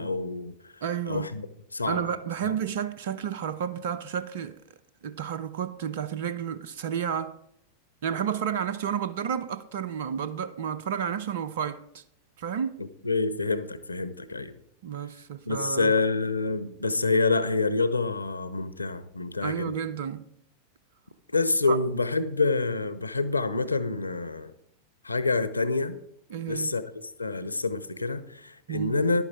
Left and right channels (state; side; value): inverted; both; correlation -0.63